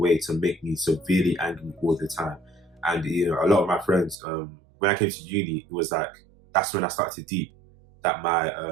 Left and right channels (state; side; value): drops out; left; at 4.2 s